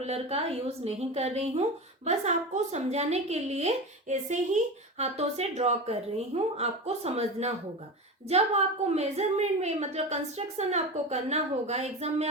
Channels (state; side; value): normal; both; correlation 0.25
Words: का यूज नहीं कर रही हूँ, बस आपको समझाने के लिए ऐसे ही हाथों से ड्रॉ कर रही हूँ, आपको समझना होगा। जब आपको मेजरमेंट में, मतलब कंस्ट्रक्शन आपको करना होगा, एग्जाम में